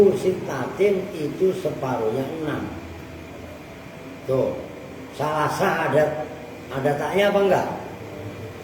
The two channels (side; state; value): both; identical; correlation 1.00